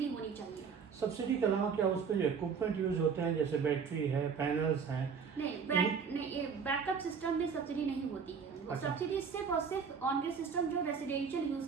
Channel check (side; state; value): left; quieter; 6.2 dB